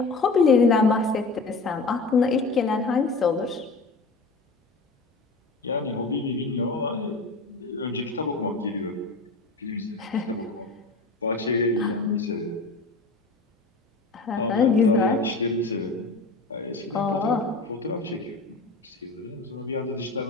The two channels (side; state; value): right; quieter; 3.6 dB